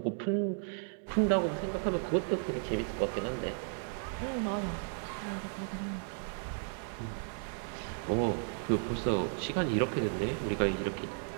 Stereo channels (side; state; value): left; silent; 55 dB below the other